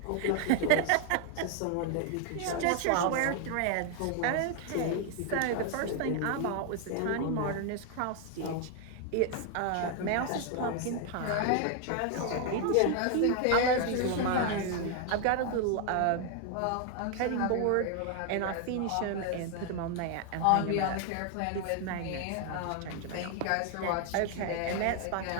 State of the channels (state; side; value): different; both; correlation 0.00